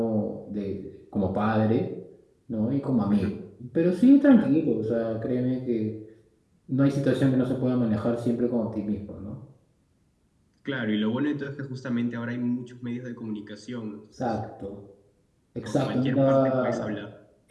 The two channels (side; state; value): both; identical; correlation 1.00